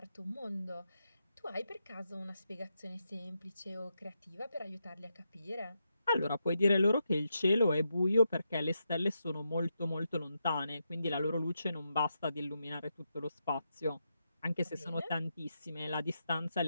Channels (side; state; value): both; inverted; correlation -0.84